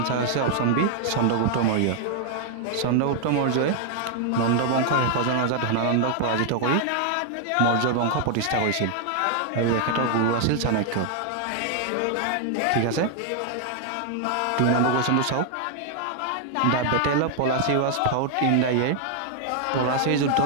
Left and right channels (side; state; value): both; different; correlation 0.00